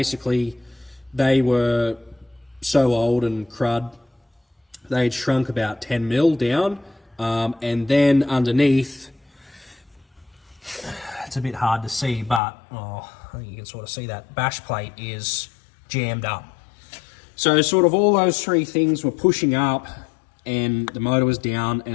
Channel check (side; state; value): right; drops out; at 12.4 s